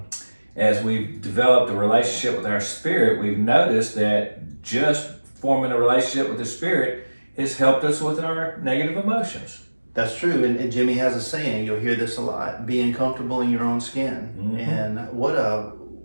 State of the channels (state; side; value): inverted; both; correlation -1.00